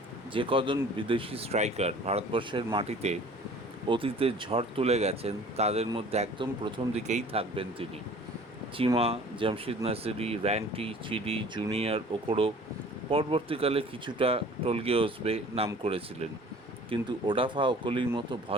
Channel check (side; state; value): both; normal; correlation 0.48